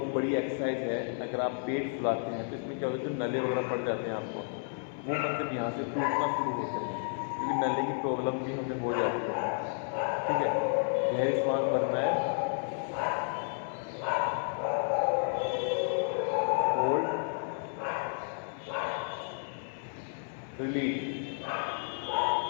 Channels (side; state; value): right; silent; 56 dB below the other